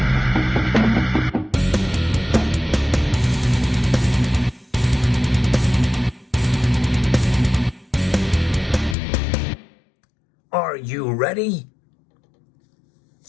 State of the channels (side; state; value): right; drops out; at 9.0 s